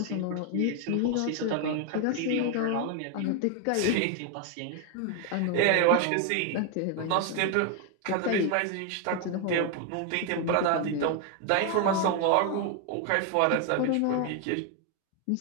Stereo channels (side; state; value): both; different; correlation 0.01